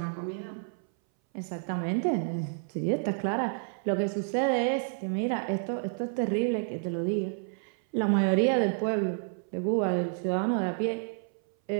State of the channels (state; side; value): silent; left; 58 dB below the other